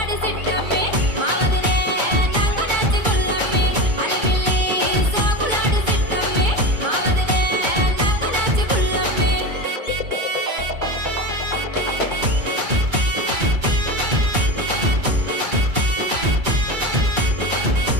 సిట్టమ్మి మా వదినే నంగనాచి పుల్లమ్మి. అలివిల్లి సోకులాడి సిట్టమ్మి మా వదినే నంగనాచి పుల్లమ్మి.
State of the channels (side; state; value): left; late; 2.2 ms